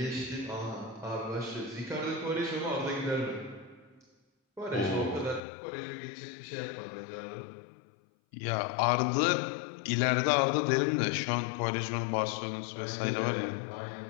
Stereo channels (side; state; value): right; drops out; at 5.4 s